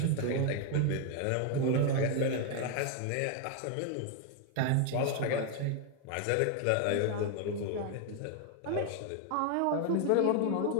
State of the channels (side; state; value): both; different; correlation 0.01